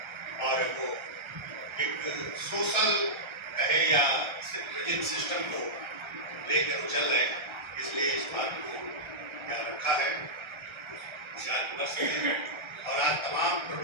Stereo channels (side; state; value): left; late; 1.3 ms